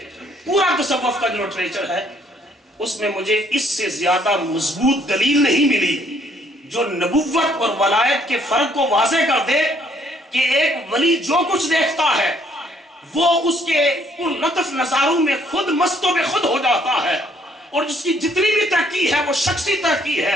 پورا تصوف کا جو لٹریچر ہے اس میں مجھے اس سے زیادہ مضبوط دلیل نہیں ملی جو نبوت اور ولایت کے فرق کو واضح کر دے کہ ایک ولی جو کچھ دیکھتا ہے وہ اس کے ان لطف نظاروں میں خود مست و بے خود ہو جاتا ہے، اور جس کی جتنی بھی ترقی ہے وہ شخصی ترقی ہے،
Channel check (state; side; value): normal; both; correlation 0.65